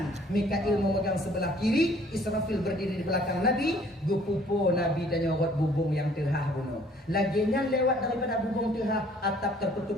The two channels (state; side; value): normal; both; correlation 0.58